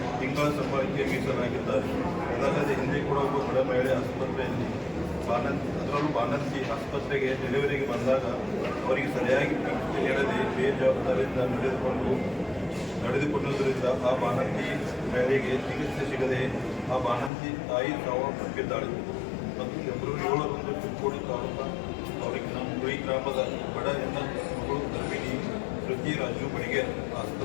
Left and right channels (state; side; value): drops out; right; at 17.3 s